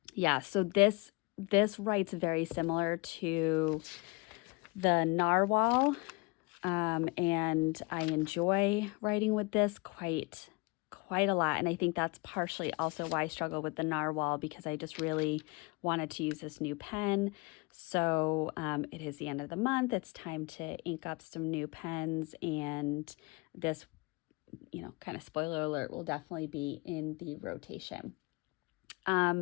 yeah, so this writes very similar to the Narwhal, and I enjoy writing with this quite a lot. And I think that's partially also why I struggle with the Narwhal, because I just really wanted to use this new pen. So it is the end of the month. It's time to ink up some new pens, and this, kind of spoiler alert, will definitely be in the rotation.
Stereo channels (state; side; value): quieter; right; 26.7 dB